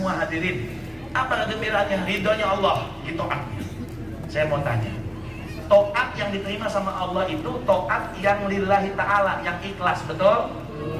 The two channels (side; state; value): both; identical; correlation 1.00